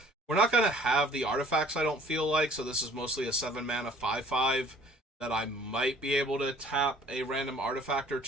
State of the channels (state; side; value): normal; both; correlation 0.54